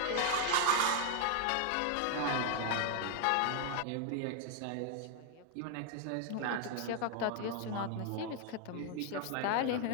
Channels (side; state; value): both; different; correlation 0.00